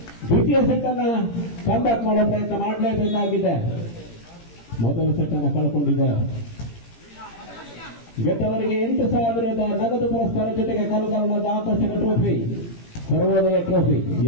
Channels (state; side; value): late; right; 17 ms